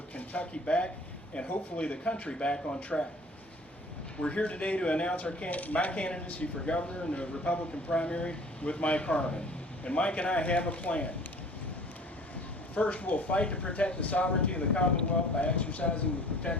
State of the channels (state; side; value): normal; both; correlation 0.48